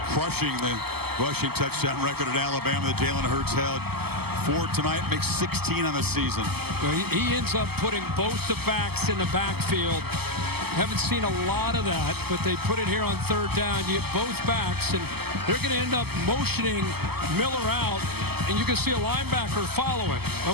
crushing the rushing touchdown record at Alabama that Jalen Hurts held. 4 tonight, makes 16 on the season. Well, he ends up putting both the backs in the backfield. Haven't seen a lot of that, but they put it here on 3rd down. You get both backs, and they're going to end up motioning Miller out, and you can see a linebacker follow him.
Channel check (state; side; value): late; left; 0.96 ms